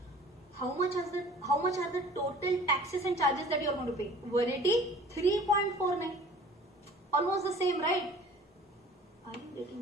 How much are the total taxes and charges that you are going to pay? 183.49. Almost the same, right? Are you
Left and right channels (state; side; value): normal; both; correlation 0.47